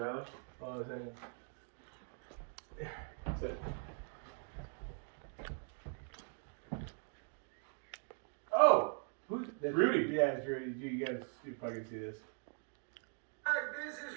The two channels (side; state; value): left; silent; 50 dB below the other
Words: Hold on a second. Sit. Oh! Who's Rudy? Yeah, it's Rudy. You guys, you fucking see this. Hi, this is